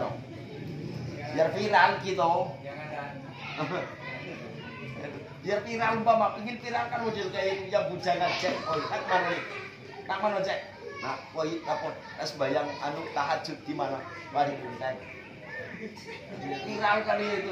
biar viral kita biar viral umpama ingin viral kan model kayak yang bujangan cek tak mana cek nah koi apa sembahyang anu tahajud di mana mari kita viral kali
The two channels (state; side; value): identical; both; correlation 1.00